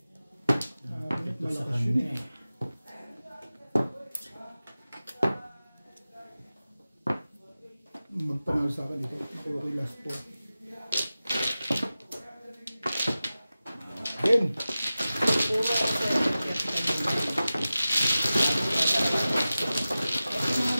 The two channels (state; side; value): inverted; both; correlation -0.95